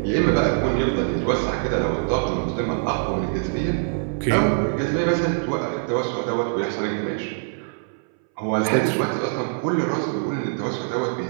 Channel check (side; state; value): left; silent; 61 dB below the other